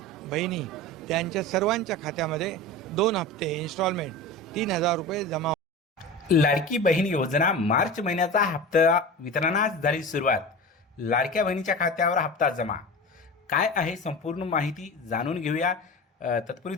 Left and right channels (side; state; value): both; normal; correlation 0.30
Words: बहिणी त्यांच्या सर्वांच्या खात्यामध्ये 2 हप्ते इन्स्टॉलमेंट 3000 रुपये जमा। लाडकी बहीण योजना मार्च महिन्याचा हप्ता वितरणास झाली सुरुवात। लाडक्या बहिणीच्या खात्यावर हप्ता जमा काय आहे संपूर्ण माहिती जाणून घेऊया। तत्पूर्वी